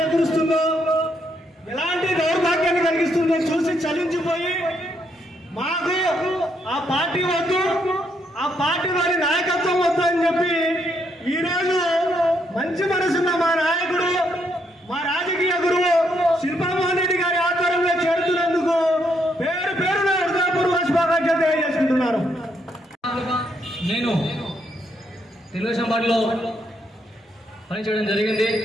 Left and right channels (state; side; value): normal; both; correlation 0.75